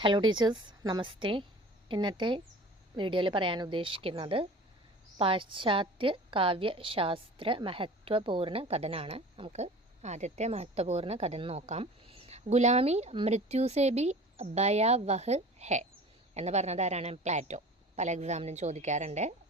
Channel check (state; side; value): normal; both; correlation 0.41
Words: Hello teachers, നമസ്തേ. ഇന്നത്തെ വീഡിയോയിൽ പറയാൻ ഉദ്ദേശിക്കുന്നത് പാശ്ചാത്യ കാവ്യശാസ്ത്ര മഹത്വപൂർണ്ണ കഥനാണ്. നമുക്ക് ആദ്യത്തെ മഹത്വപൂർണ്ണ കഥ നോക്കാം. ഗുലാമി മൃത്യുസേ ഭി ഭയാവഹ് ഹെ എന്ന് പറഞ്ഞത് ആരാണ്? പ്ലാറ്റോ. പല എക്സാമിനും ചോദിക്കാറുണ്ട്.